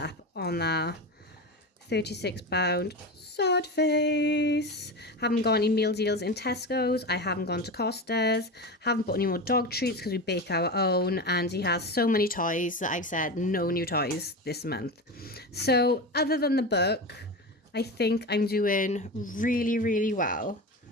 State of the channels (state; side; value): normal; both; correlation 0.24